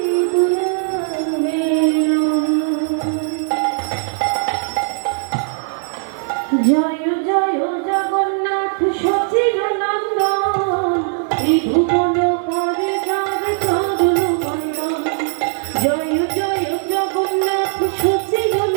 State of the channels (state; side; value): silent; left; 65 dB below the other